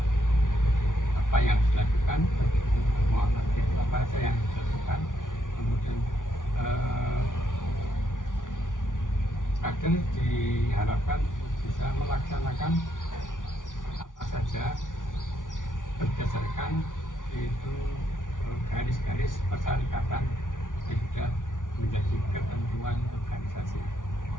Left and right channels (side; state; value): right; late; 0.88 ms